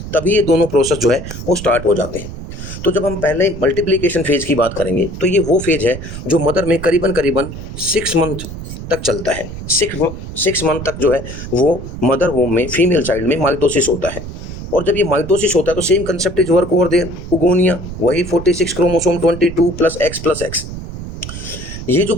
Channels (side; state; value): right; noise; rumble, 10 dB below the sound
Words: तभी ये दोनों प्रोसेस जो है वो स्टार्ट हो जाते हैं। तो जब हम पहले मल्टीप्लिकेशन फेज की बात करेंगे, तो ये वो फेज है जो मदर में करीबन 6 मंथ तक चलता है। 6 मंथ तक जो है वो मदर वोम में फीमेल चाइल्ड में माइटोसिस होता है। और जब ये माइटोसिस होता है तो same concept is work over there, oogonia, वही 46 क्रोमोसोम 22 प्लस एक्स। ये जो